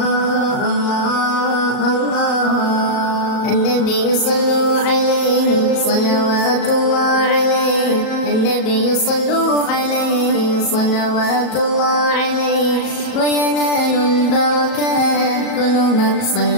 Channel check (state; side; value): late; right; 37 ms